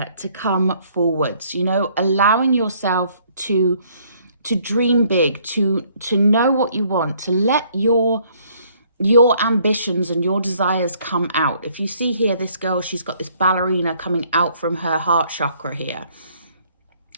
to come forwards, you know, allowing yourself to dream big, to know what you want, to let your ambitions and your desires come out. If you see here, this girl, she's got this ballerina coming out from her heart chakra here.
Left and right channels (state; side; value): inverted; both; correlation -0.64